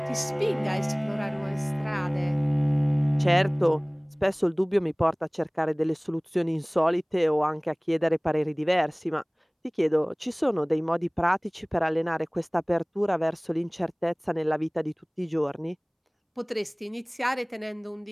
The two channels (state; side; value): identical; both; correlation 1.00